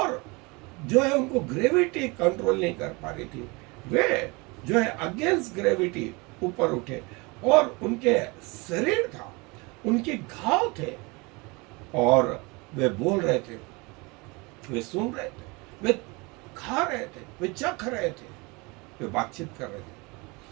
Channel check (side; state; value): left; quieter; 26.8 dB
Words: जो है उनको ग्रेविटी कंट्रोल नहीं कर पा रही थी, वे जो है अगेंस्ट ग्रेविटी ऊपर उठे, और उनके शरीर था, उनके घाव थे, और वे बोल रहे थे, वे सुन रहे थे, वे खा रहे थे, वे चख रहे थे, वे बातचीत कर रहे